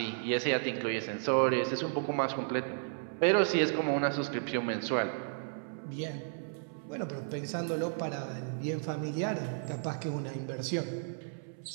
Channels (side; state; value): left; silent; 55 dB below the other